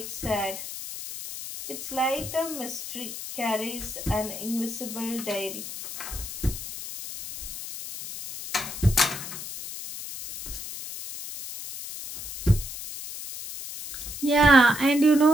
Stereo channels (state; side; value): noise; left; hiss, 9 dB below the sound